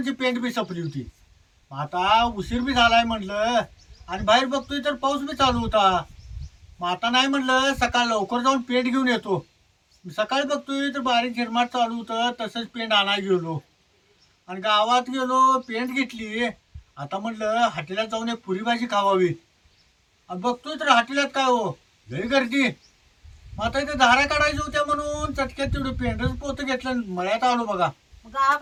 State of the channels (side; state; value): both; identical; correlation 1.00